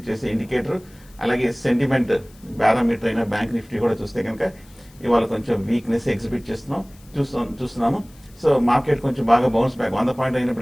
చేసే ఇండికేటర్. అలాగే సెంటిమెంట్ పారామీటర్ అయిన బ్యాంక్ నిఫ్టీ కూడా చూస్తే కనుక ఇవాళ కొంచెం వీక్నెస్ ఎగ్జిబిట్ చూస్తున్నాము. సో మార్కెట్ కొంచెం బాగా బౌన్స్ బ్యాక్ 100 పాయింట్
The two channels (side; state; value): left; noise; hiss, 27 dB below the sound